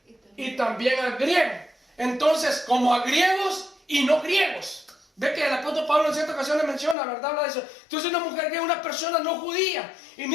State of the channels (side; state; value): right; drops out; at 7.0 s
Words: y también al griego. Entonces, como a griegos y no griegos. Ve que el apóstol Pablo en ciertas ocasiones menciona, ¿verdad? Habla de eso. Entonces, una mujer que es una persona no judía. Y